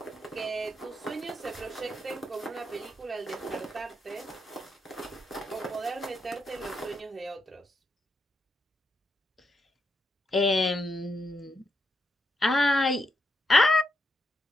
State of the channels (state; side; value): normal; both; correlation 0.81